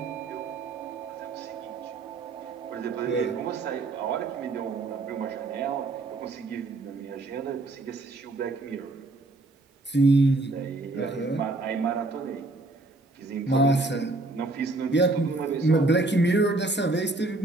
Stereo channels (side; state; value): left; quieter; 3.1 dB